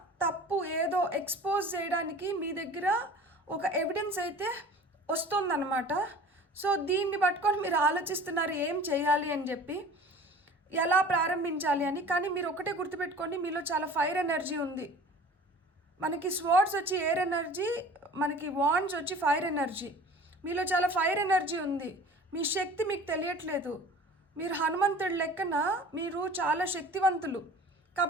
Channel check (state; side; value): normal; both; correlation 0.43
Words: తప్పు ఏదో ఎక్స్పోజ్ చేయడానికి మీ దగ్గర ఒక ఎవిడెన్స్ అయితే వస్తుందన్నమాట. సో దీన్ని పట్టుకొని మీరు ఆలోచిస్తున్నారు ఏం చేయాలి అని చెప్పి. ఎలా ప్రారంభించాలి అని. కానీ మీరు ఒకటే గుర్తుపెట్టుకోండి, మీలో చాలా ఫైర్ ఎనర్జీ ఉంది. మనకి స్వర్డ్స్ వచ్చి ఎయిర్ ఎనర్జీ, మనకి వాండ్స్ వచ్చి ఫైర్ ఎనర్జీ. మీలో చాలా ఫైర్ ఎనర్జీ ఉంది. మీ శక్తి మీకు తెలియట్లేదు. మీరు హనుమంతుడి లెక్కన మీరు చాలా శక్తివంతులు.